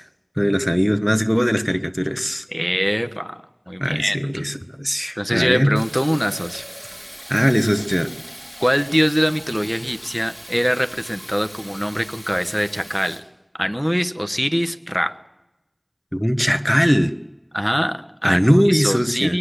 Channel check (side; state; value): both; identical; correlation 1.00